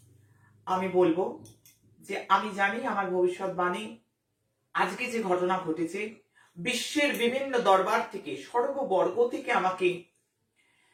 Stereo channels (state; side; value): identical; both; correlation 1.00